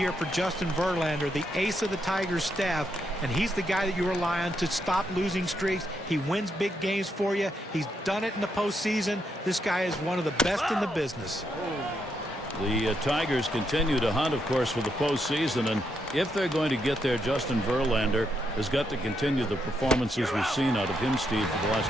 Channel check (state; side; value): normal; both; correlation 0.79